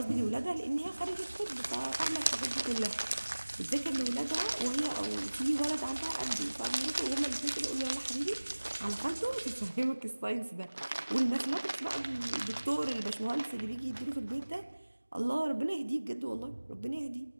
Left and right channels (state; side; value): inverted; both; correlation -1.00